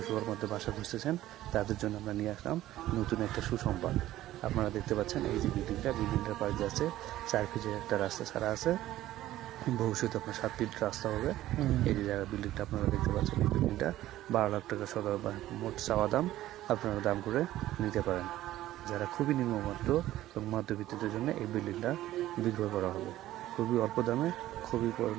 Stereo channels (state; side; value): quieter; left; 14.6 dB